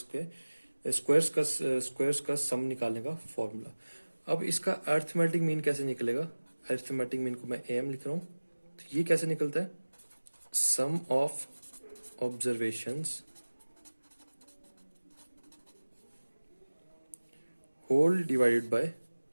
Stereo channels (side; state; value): both; inverted; correlation -1.00